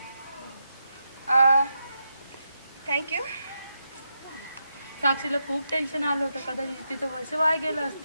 थँक्यू. साक्षीला खूप टेन्शन आलं होतं, कदाचित तिचं वर्ष वाया गेलं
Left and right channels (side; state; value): both; inverted; correlation -0.85